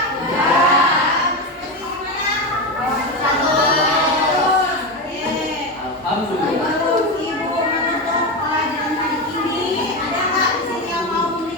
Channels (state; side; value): normal; both; correlation 0.16